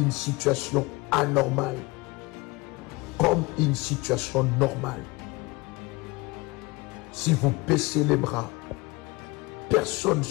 situation anormale comme une situation normale. Si vous baissez les bras, personne ne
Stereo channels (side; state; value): right; quieter; 23.7 dB